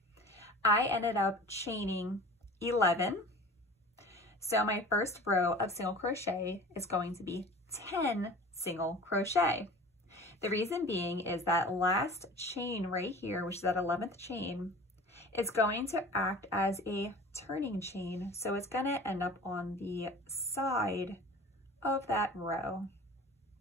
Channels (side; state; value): both; normal; correlation 0.40